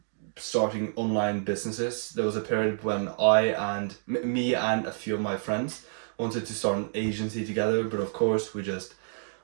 starting online businesses. There was a period when me and a few of my friends wanted to start an agency together, but of course we just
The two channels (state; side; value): silent; left; digital silence